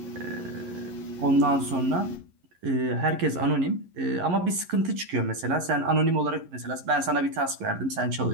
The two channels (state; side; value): late; left; 11 ms